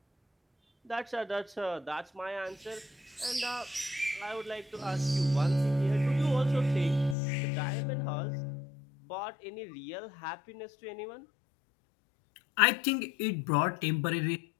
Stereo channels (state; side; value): drops out; right; at 7.2 s